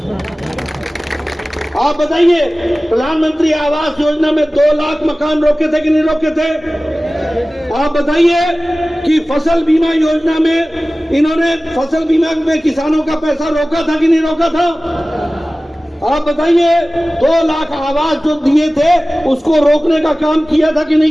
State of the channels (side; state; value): both; normal; correlation 0.97